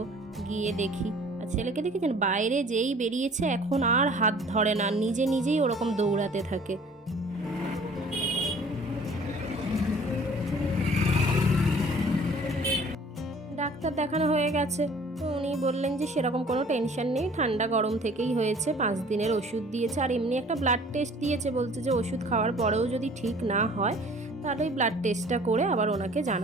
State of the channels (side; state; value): both; normal; correlation 0.51